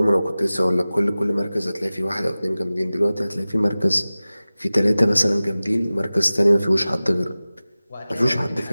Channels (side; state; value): both; inverted; correlation -0.97